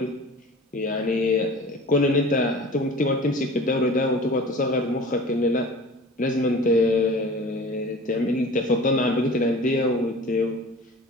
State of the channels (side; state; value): both; normal; correlation 0.41